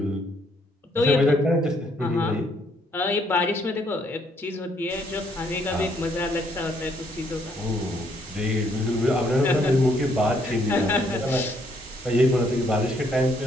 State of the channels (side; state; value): both; normal; correlation 0.69